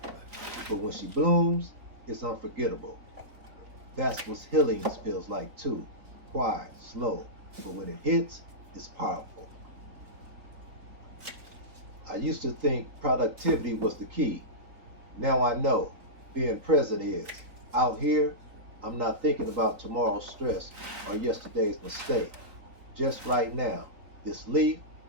but when she blooms, it's unforgettable. That's what healing feels like too. Quiet, slow, but when it hits, it's powerful. I used to think productivity was the key. Now I know being present is. Out here, I'm not thinking about tomorrow's stress or yesterday's mistake. Just right now, this leaf,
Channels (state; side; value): late; left; 3.7 ms